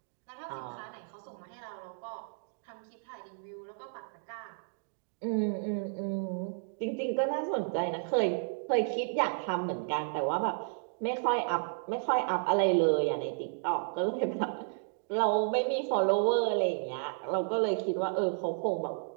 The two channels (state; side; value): silent; left; digital silence